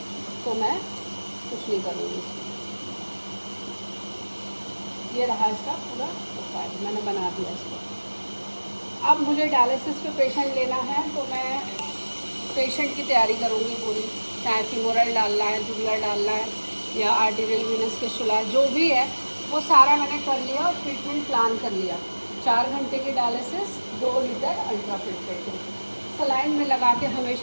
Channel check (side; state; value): both; inverted; correlation -1.00